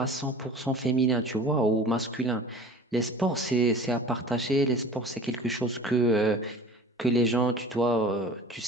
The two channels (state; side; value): normal; both; correlation 0.41